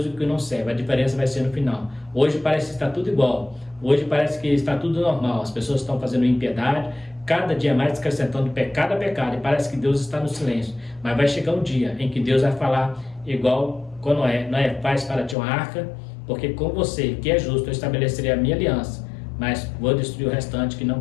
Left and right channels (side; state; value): right; drops out; at 15.4 s